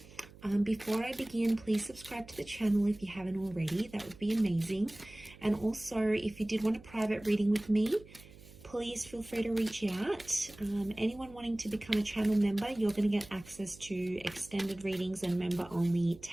Before I begin, please subscribe to the channel if you haven't already. That would be amazing. And also, if you did want a private reading with me, please feel free to reach out. Anyone wanting to become a channel member, you're going to get access to extended readings and member-only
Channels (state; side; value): noise; right; hum, 21 dB below the sound